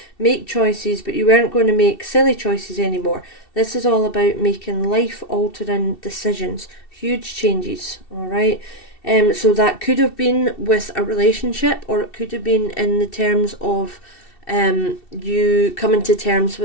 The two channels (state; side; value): late; right; 2.7 ms